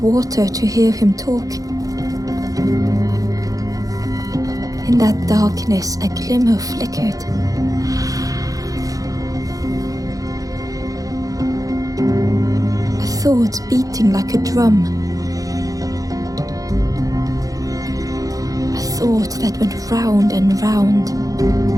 water to hear him talk. In that darkness, a glimmer flickered. A thought beating like a drum. A thought that went round and round.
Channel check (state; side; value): late; left; 0.17 ms